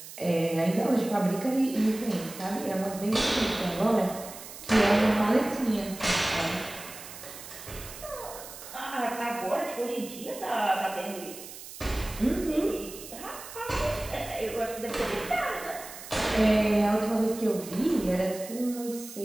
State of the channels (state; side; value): noise; right; hiss, 14 dB below the sound